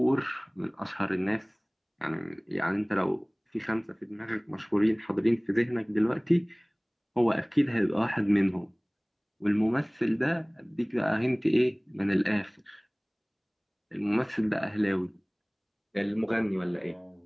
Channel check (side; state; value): both; identical; correlation 1.00